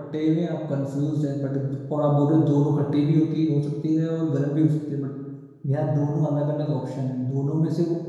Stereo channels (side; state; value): both; identical; correlation 1.00